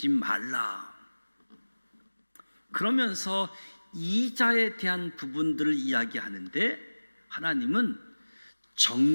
말라. 그러면서 이자에 대한 부분들을 이야기하는데 하나님은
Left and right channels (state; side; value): inverted; both; correlation -1.00